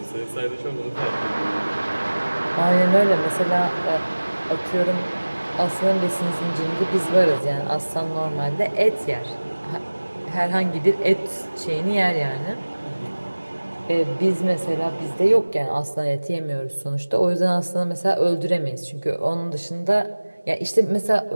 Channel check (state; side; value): inverted; both; correlation -1.00